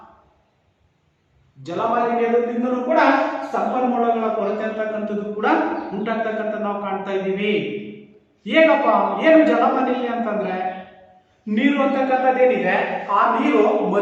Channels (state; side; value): identical; both; correlation 1.00